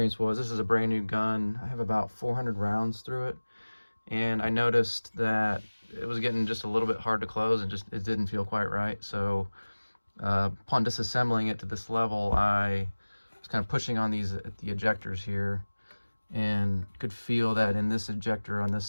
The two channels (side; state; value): both; inverted; correlation -1.00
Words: was this is a brand new gun. I have about 400 rounds through it, and I noticed that it was getting just a little bit hard to close, and it didn't feel quite right. So upon disassembling it to this level, I was kind of pushing on the ejectors here, and could feel that in this ejector on this